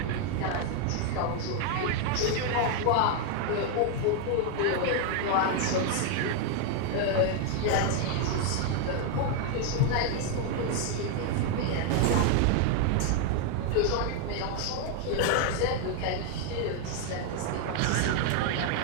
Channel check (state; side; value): different; both; correlation 0.01